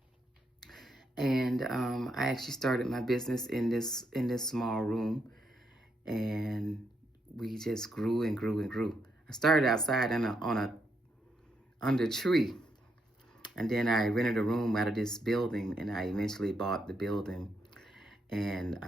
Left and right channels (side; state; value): both; normal; correlation 0.78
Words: and I actually started my business in this small room, and we just grew and grew and grew. I started outside under a tree. And then I rented a room out of this building, and I eventually bought the building. And